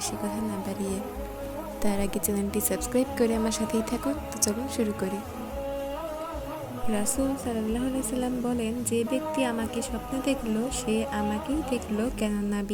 কথা না বাড়িয়ে। তার আগে চ্যানেলটি সাবস্ক্রাইব করে আমার সাথেই থাকুন। তো চলুন শুরু করি। রাসূল সাল্লাল্লাহু আলাইহি সাল্লাম বলেন, যে ব্যক্তি আমাকে স্বপ্নে দেখল সে আমাকেই দেখল, কেননা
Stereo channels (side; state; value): both; identical; correlation 1.00